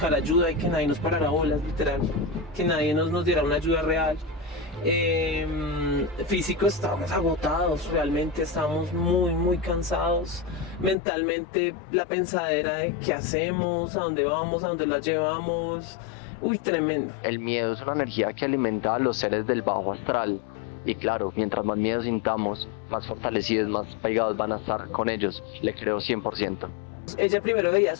ayuda y que nadie nos parara bolas, literal, que nadie nos diera una ayuda real. Físico, estábamos agotados, realmente estábamos muy cansados. Mentalmente la pensadera de qué hacemos, a dónde vamos, a dónde la llevamos, tremendo. El miedo es una energía que alimenta a los seres del bajo astral. Y claro, mientras más miedo sintamos, más fortalecidos, más pegados van a estar con ellos. Le creo 100%. Ella primero veía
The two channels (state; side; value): drops out; right; at 11.0 s